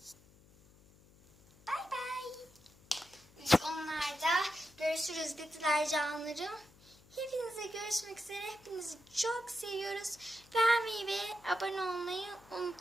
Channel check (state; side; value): noise; left; hum, 26 dB below the sound